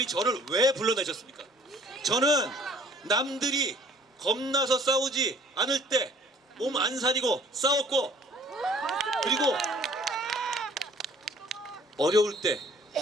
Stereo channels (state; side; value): normal; both; correlation 0.55